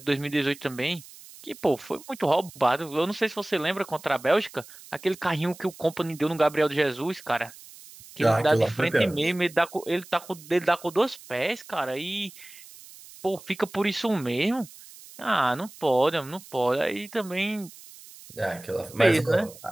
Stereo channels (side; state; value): right; noise; hiss, 19 dB below the sound